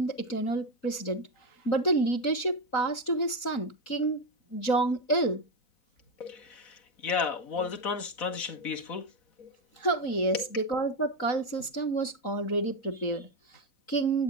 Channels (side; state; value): right; late; 4.0 ms